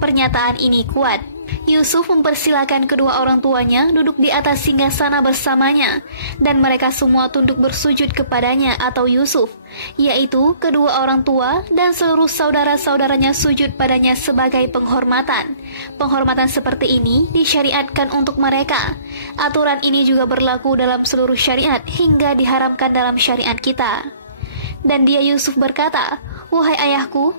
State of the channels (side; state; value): both; inverted; correlation -0.59